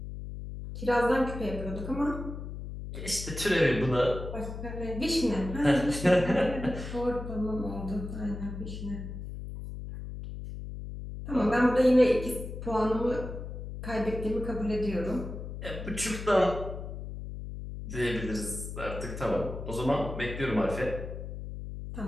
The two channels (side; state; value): left; noise; hum, 8 dB below the sound